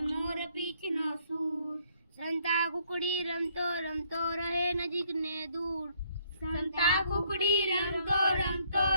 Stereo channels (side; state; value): both; inverted; correlation -0.66